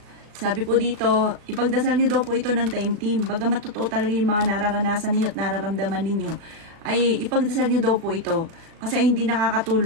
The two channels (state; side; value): late; left; 36 ms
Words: Sabi po dito, ipagdasal niyo daw po ito ng time team. Bagamat totoo talaga yung mga nararanasan ninyo at nararamdaman ninyo, ay ipagdasal niyo daw po ito. Kasi hindi